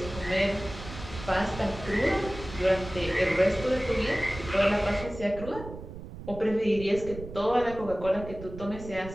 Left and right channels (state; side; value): noise; right; rumble, 12 dB below the sound